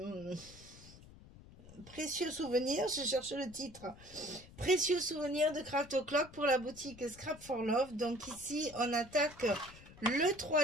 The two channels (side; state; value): left; noise; rumble, 20 dB below the sound